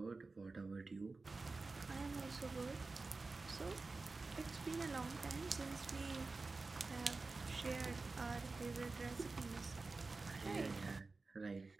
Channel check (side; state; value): left; quieter; 3.7 dB